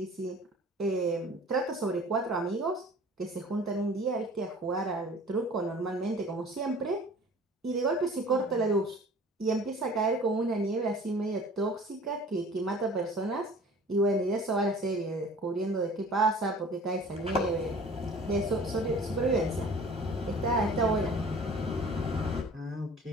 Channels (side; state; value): both; normal; correlation 0.46